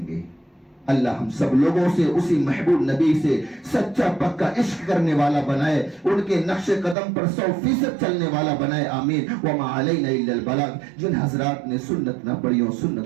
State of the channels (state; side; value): drops out; left; at 7.0 s